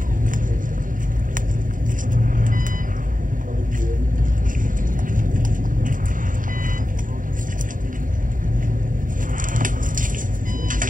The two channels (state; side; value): late; left; 0.39 ms